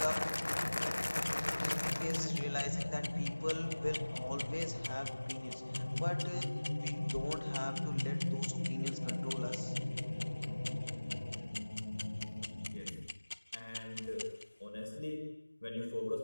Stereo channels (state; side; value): inverted; both; correlation -1.00